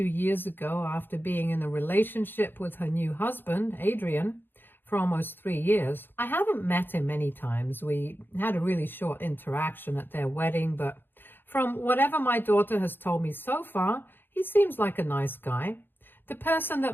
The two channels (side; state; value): right; late; 0.098 ms